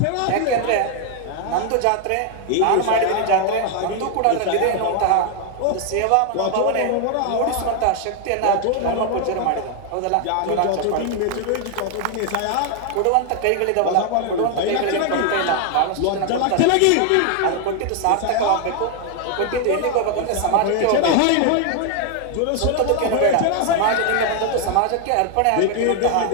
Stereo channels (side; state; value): both; different; correlation 0.00